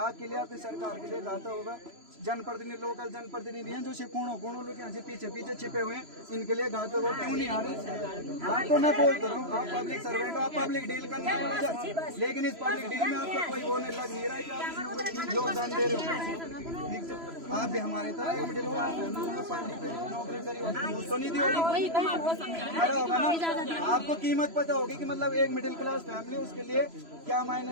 लिए, आपकी सरकार के लिए घातक होगा। जनप्रतिनिधि, लोकल जनप्रतिनिधि हैं जो कोणों लोग यहाँ से पीछे छिपे हुए हैं, इनके लिए घातक हो। क्यों नहीं आ रहे? हाँ, तो मैं बोलता हूँ, आप पब्लिक सर्वेंट हो, आप पब्लिक डील करने वाले, लेकिन इस पब्लिक डील में आपका कोई वो नहीं लग नहीं रहा है कि आप योगदान दे रहे हो। आप भी हमारे तरह एक मिडिल क्लास नौकरी करी तो नहीं दी होगी, पता होगा ना आपको, कीमत पता होगी कि मतलब एक मिडिल क्लास फैमिली, उसके लिए क्या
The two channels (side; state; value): left; late; 3.0 ms